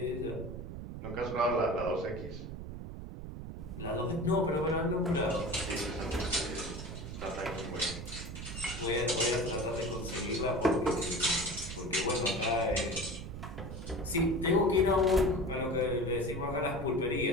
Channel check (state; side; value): noise; right; rumble, 8 dB below the sound